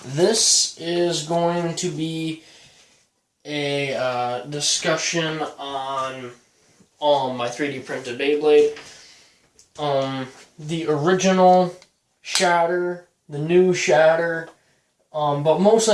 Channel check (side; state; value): both; identical; correlation 1.00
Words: this is going to be a discussion on my 3D printed Beyblade. The original Shatter, the new Shatter, but